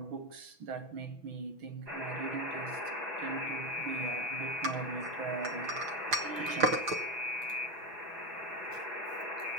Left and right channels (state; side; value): late; left; 6.1 ms